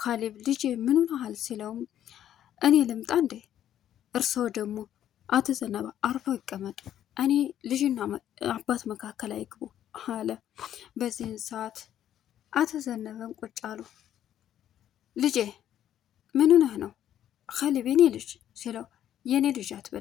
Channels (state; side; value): quieter; right; 11.0 dB